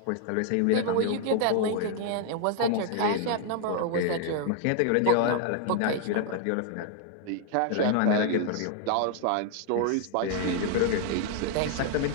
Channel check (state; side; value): different; both; correlation 0.00